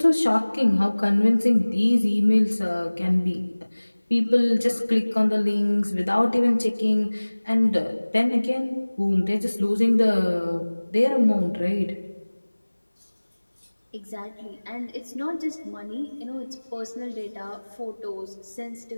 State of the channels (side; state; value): both; inverted; correlation -1.00